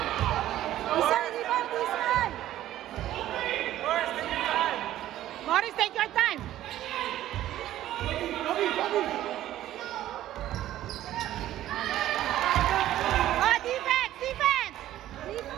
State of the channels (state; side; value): quieter; left; 13.4 dB